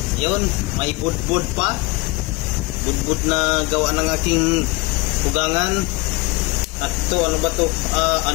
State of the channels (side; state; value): right; quieter; 25.0 dB